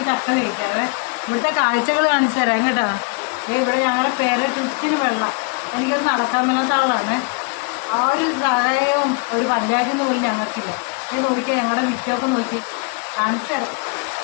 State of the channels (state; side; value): quieter; right; 34.9 dB